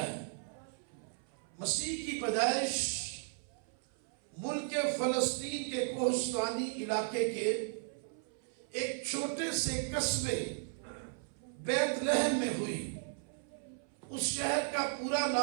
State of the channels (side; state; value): left; silent; 54 dB below the other